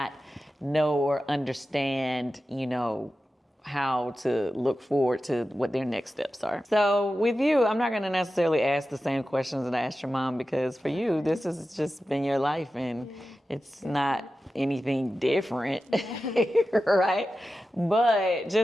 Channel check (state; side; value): normal; both; correlation 0.93